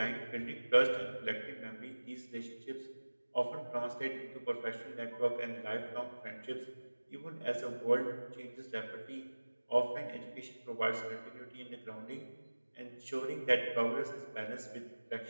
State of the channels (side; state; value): both; inverted; correlation -1.00